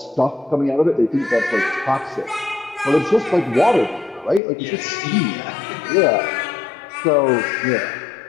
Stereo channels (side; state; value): right; drops out; at 4.4 s